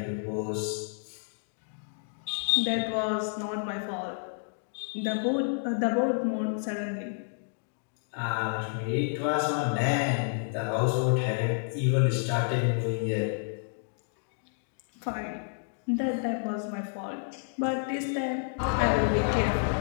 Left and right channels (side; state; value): right; silent; digital silence